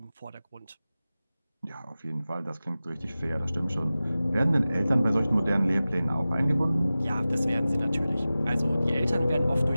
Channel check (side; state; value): both; inverted; correlation -0.96